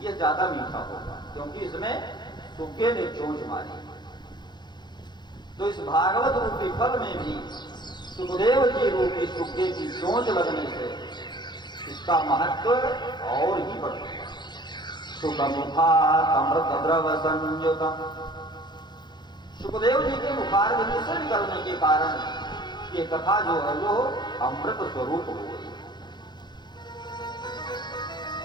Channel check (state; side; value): late; right; 0.21 ms